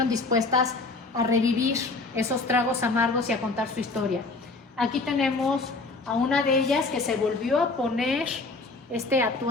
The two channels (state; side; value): quieter; right; 3.6 dB